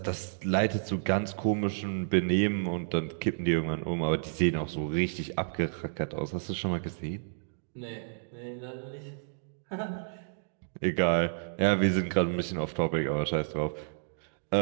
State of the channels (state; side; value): silent; left; digital silence